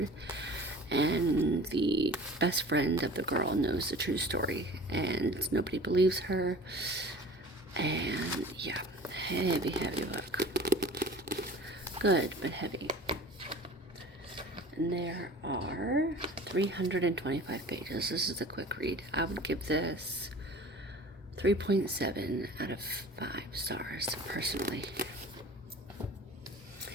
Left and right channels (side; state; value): both; normal; correlation 0.42